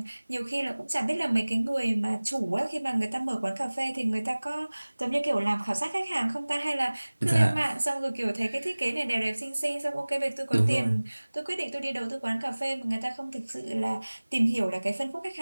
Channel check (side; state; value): both; inverted; correlation -1.00